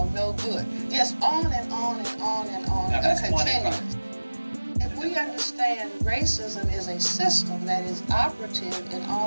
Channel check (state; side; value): inverted; both; correlation -1.00